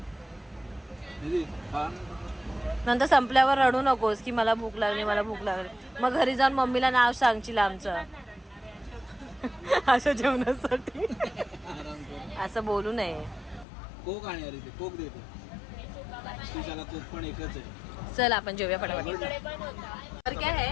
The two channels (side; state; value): right; drops out; at 13.7 s